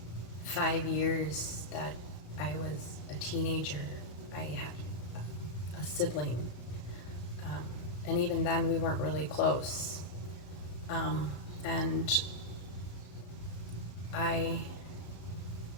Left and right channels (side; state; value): right; late; 33 ms